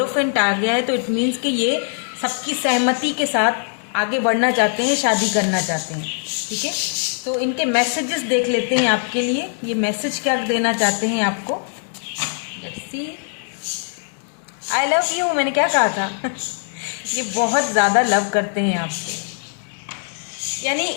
आ गया है, तो इट मीन्स कि ये सबकी सहमति के साथ आगे बढ़ना चाहते हैं, शादी करना चाहते हैं, ठीक है। तो इनके मैसेजेस देख लेते हैं आपके लिए, ये मैसेज क्या देना चाहते हैं आपको। Let's see. I love you, मैंने क्या कहा था? ये बहुत ज़्यादा लव करते हैं आपसे। यानी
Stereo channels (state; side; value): silent; right; 60 dB below the other